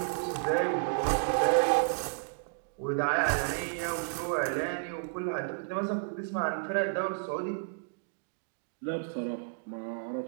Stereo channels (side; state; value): left; silent; digital silence